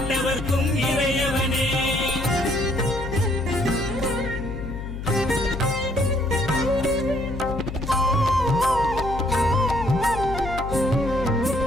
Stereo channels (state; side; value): noise; left; hum, 7 dB below the sound